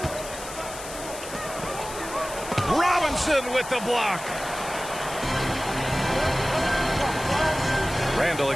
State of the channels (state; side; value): noise; left; hiss, 12 dB below the sound